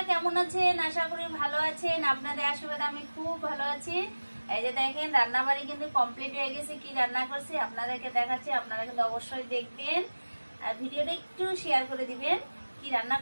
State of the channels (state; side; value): inverted; both; correlation -1.00